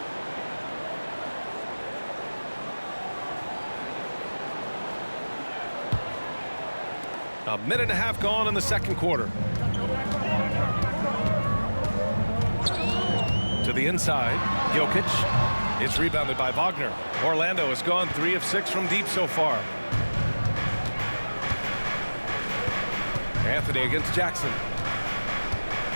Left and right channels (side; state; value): both; inverted; correlation -1.00